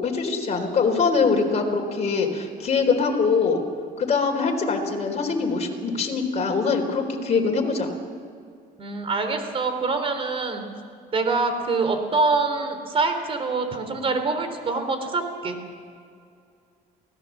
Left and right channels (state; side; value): normal; both; correlation 0.35